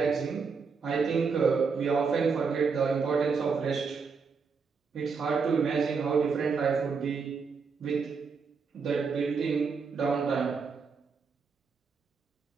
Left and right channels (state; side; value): quieter; left; 5.3 dB